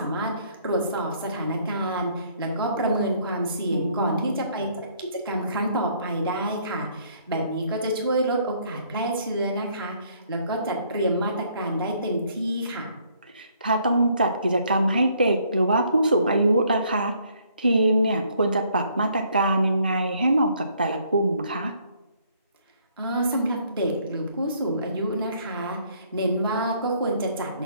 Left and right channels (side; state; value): both; inverted; correlation -0.65